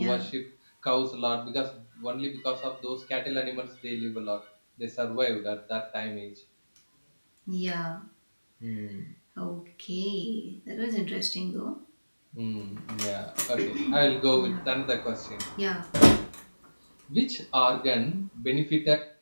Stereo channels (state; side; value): inverted; both; correlation -1.00